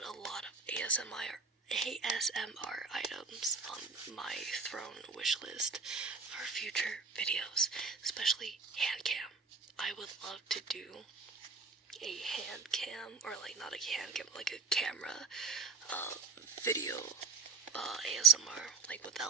a lot of ASMR items on my throne wish list for future videos, especially hand cam. I would love to do a hand cam, or like not a hand cam, like a camera video ASMR, like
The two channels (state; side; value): quieter; left; 5.0 dB